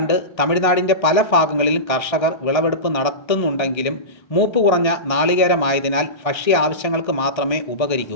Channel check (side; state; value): right; late; 1.6 ms